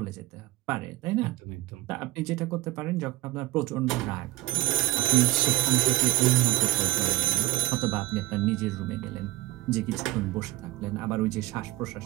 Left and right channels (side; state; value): left; quieter; 17.6 dB